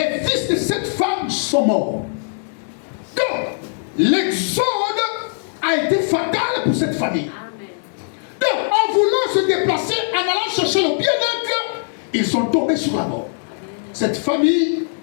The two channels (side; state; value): right; silent; digital silence